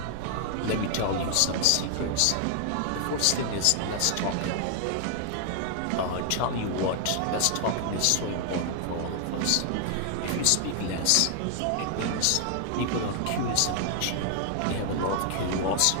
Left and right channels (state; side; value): different; both; correlation 0.00